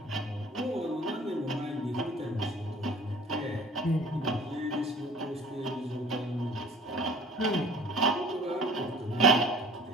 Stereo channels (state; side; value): normal; both; correlation 0.47